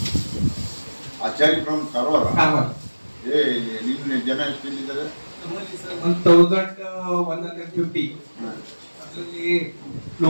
ಆಚಾರ್ಯ ಫ್ರಮ್ ಕಾರವಾರ. ನಿಮ್ಮ ಜನ ಎಷ್ಟಿದ್ದಾರೆ? 1150. ಅದರಲ್ಲಿ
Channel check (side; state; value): both; inverted; correlation -1.00